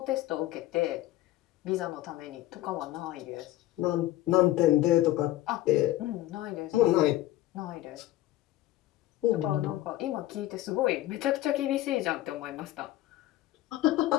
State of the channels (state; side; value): quieter; right; 15.4 dB